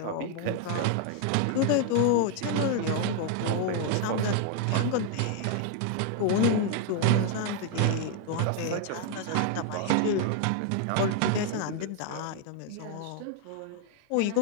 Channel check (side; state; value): both; different; correlation 0.00